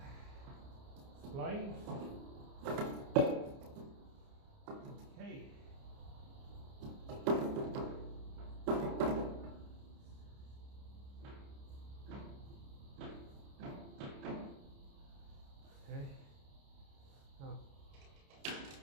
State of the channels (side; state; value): left; late; 29 ms